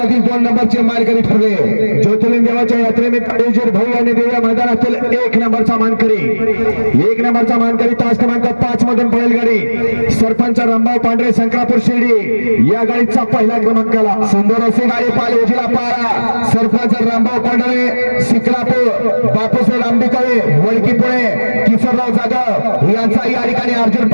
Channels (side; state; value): both; inverted; correlation -1.00